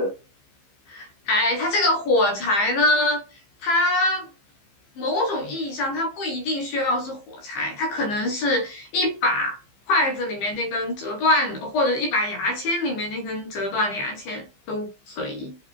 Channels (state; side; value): late; right; 15 ms